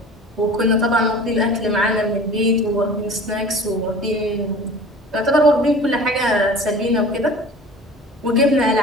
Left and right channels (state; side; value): normal; both; correlation 0.41